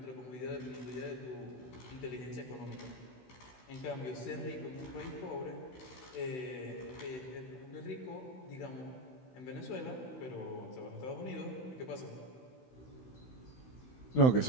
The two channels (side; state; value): right; late; 16 ms